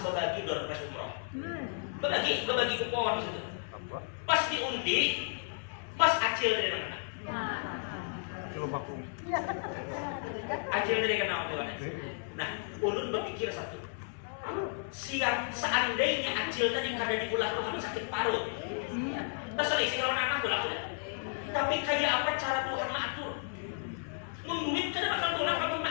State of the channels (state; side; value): silent; right; 56 dB below the other